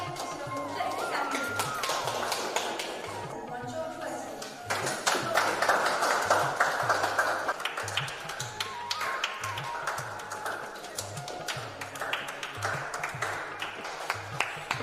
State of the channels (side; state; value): both; identical; correlation 1.00